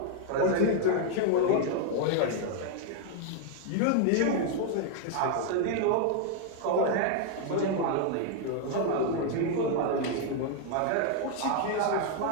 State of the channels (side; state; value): both; different; correlation 0.00